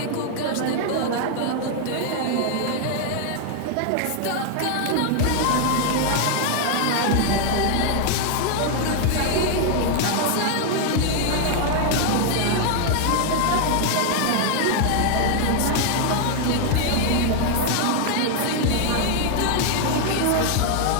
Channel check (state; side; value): different; both; correlation 0.00